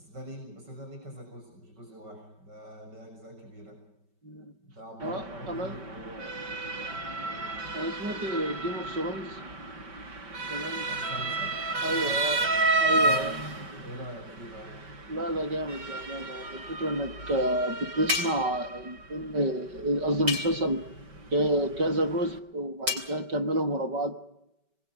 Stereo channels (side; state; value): left; late; 5.2 ms